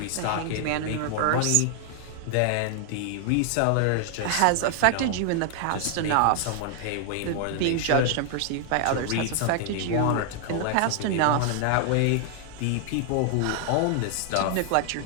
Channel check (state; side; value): different; both; correlation 0.00